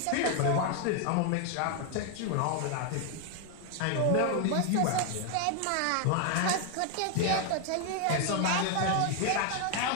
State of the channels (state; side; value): different; both; correlation 0.00